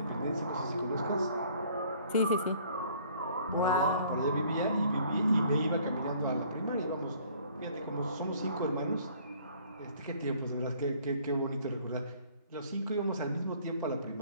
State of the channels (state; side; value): inverted; both; correlation -0.57